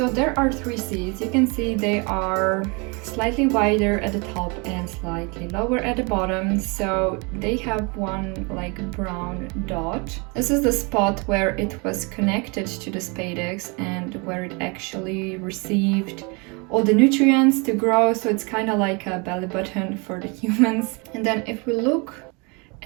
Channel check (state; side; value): quieter; left; 30.4 dB